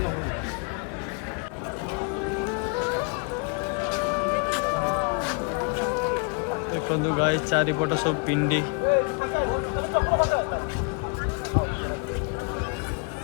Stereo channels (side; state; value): right; quieter; 36.0 dB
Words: देखंदु गाय चारिपट सब पिंडी